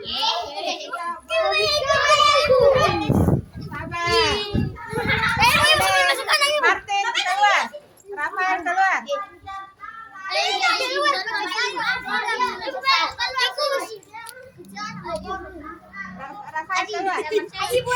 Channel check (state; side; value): identical; both; correlation 1.00